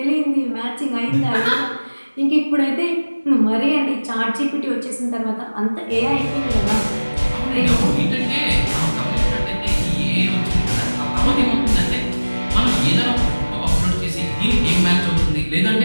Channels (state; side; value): inverted; both; correlation -1.00